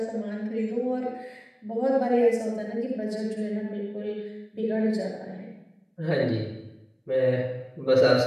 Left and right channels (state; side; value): identical; both; correlation 1.00